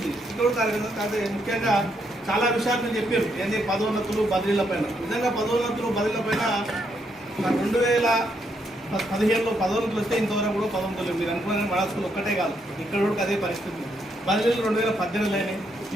ఇక్కడ కార్యక్రమం కాదు. ముఖ్యంగా చాలా విషయాలు నేను చెప్పారు, ఏంటి పదోన్నతులు బదిలీల పైన. నిజంగా పదోన్నతులు బదిలీల పైన 2015లో పదోన్నతులు వస్తే ఇంతవరకు కూడా పదోన్నతులు మీరు అనుకున్న మన స్కూల్ ఒక్కటే కాదు, ఇక్కడ కూడా అదే పరిస్థితి. బదిలీలు 2018 అయినాయి,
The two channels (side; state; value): both; normal; correlation 0.76